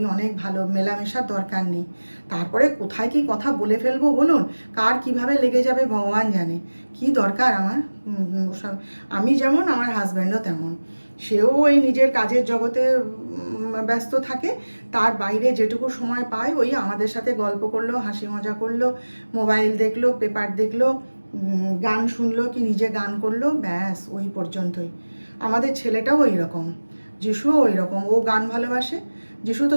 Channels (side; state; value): both; inverted; correlation -1.00